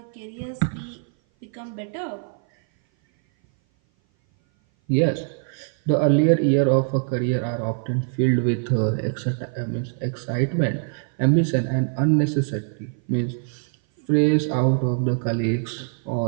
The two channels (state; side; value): silent; left; 57 dB below the other